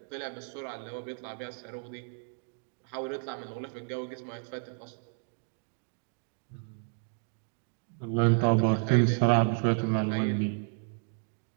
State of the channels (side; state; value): left; silent; 56 dB below the other